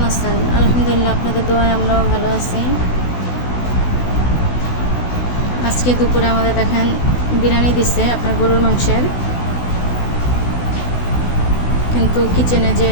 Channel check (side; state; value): right; late; 16 ms